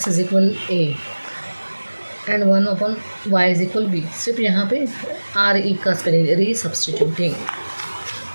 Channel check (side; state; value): both; inverted; correlation -1.00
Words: is equal a and 1/y is equal b, सिर्फ यहाँ पे RE का spelling, रीसब्स्टिट्यूटिंग।